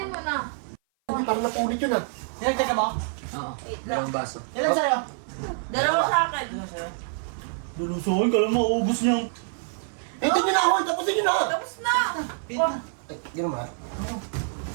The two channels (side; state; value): left; silent; 56 dB below the other